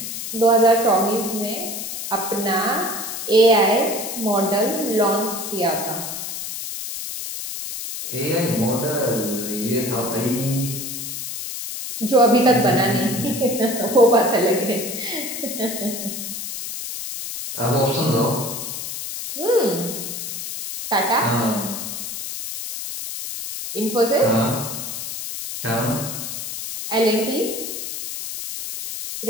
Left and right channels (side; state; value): left; noise; hiss, 6 dB below the sound